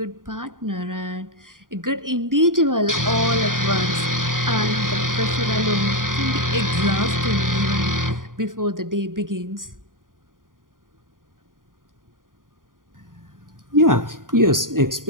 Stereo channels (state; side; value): late; left; 0.90 ms